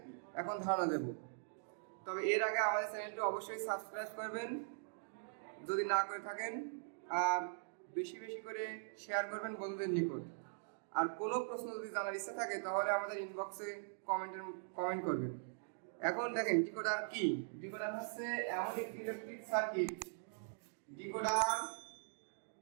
এখন ধারণা দেব। তবে এর আগে আমাদের চ্যানেলটি অবশ্যই সাবস্ক্রাইব করবেন যদি না করে থাকেন, আর বেশি বেশি করে শেয়ার করবেন বন্ধুদের নিকট। আর কোনো প্রশ্ন যদি জানার ইচ্ছা থাকে তাহলে আমাদের ইনবক্সে কমেন্ট করবেন। এখন দেখেন ডিকোডার কি। ডিকোডার হচ্ছে এমন একটি ইলেকট্রিক সার্কিট।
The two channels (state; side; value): silent; left; digital silence